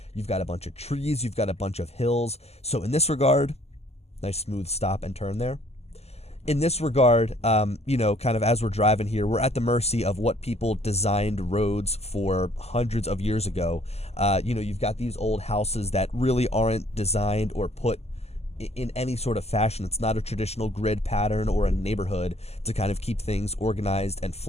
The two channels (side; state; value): right; late; 0.30 ms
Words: You've got a bunch of trees, you've got a bunch of hills. So in this regard, nice smooth stop and turn there. In this regard, you know, kind of as we're driving here, we're at the mercy of what people designed roads for hundreds of years ago. You know, you've got these old houses that really aren't designed or put in any sort of fashion. It's not a traditional grid pattern or a neighborhood to kind of keep things organized and